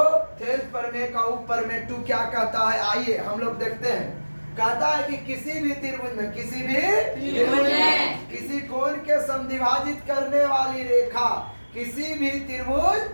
थेल्स प्रमेय का ऊपर में 2 क्या कहता है, आइए हम लोग देखते हैं। कहता है कि किसी भी त्रिभुज में किसी कोण के समद्विभाजित करने वाली रेखा, किसी भी त्रिभुज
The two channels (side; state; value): both; inverted; correlation -1.00